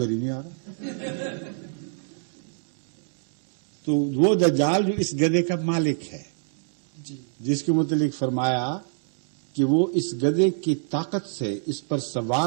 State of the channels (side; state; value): left; silent; digital silence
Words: ہی نہیں آ رہا. تو وہ دجال جو اس گدھے کا مالک ہے، جس کے متعلق فرمایا کہ وہ اس گدھے کی طاقت سے اس پر